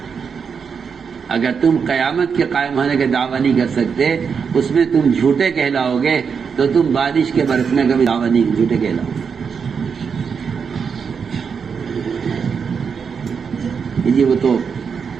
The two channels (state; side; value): quieter; left; 6.2 dB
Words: اگر تم قیامت کے قائم ہونے کا دعویٰ نہیں کر سکتے، اس میں تم جھوٹے کہلاؤ گے، تو تم بارش کے برسنے کا بھی دعویٰ نہیں، جھوٹے کہلاؤ گے۔ جی وہ تو